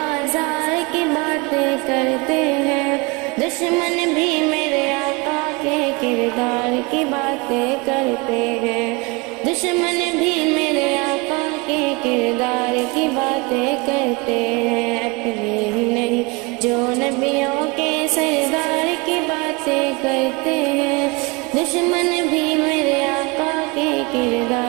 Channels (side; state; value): left; quieter; 26.9 dB